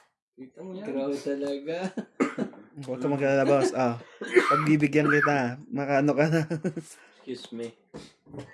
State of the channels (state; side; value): identical; both; correlation 1.00